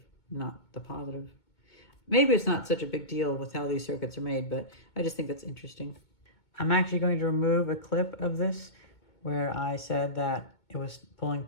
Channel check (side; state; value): right; late; 2.2 ms